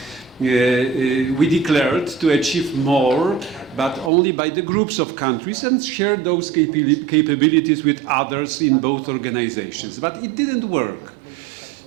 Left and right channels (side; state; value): left; drops out; at 4.1 s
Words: we declared to achieve more, but only by the groups of countries, and share those capabilities with others in both organizations. But it didn't work.